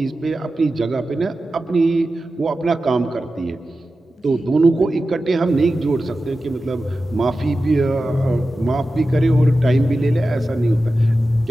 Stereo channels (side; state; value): both; normal; correlation 0.93